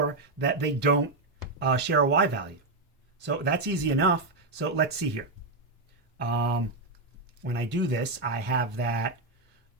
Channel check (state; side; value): quieter; left; 3.2 dB